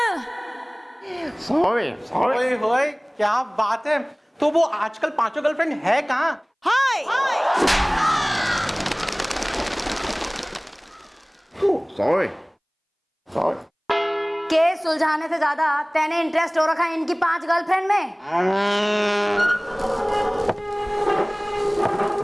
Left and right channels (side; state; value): both; identical; correlation 1.00